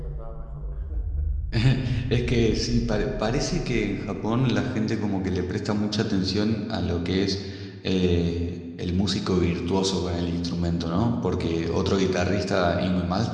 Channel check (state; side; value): identical; both; correlation 1.00